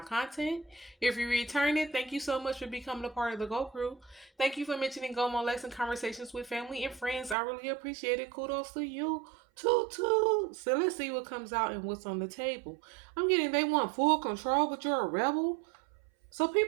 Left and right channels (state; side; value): drops out; left; at 7.4 s